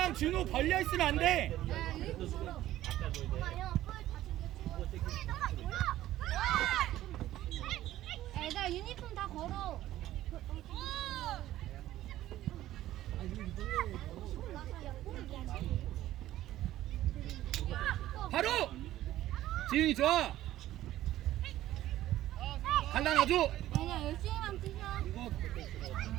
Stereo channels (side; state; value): left; quieter; 14.2 dB